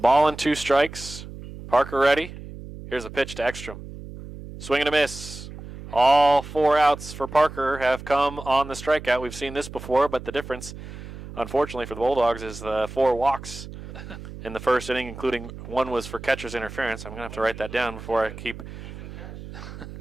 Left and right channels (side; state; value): right; noise; hum, 13 dB below the sound